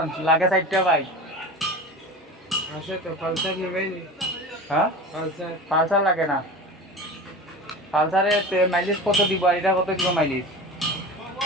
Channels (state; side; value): normal; both; correlation 0.32